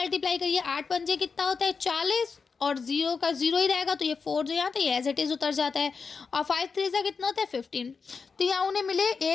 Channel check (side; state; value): right; quieter; 5.2 dB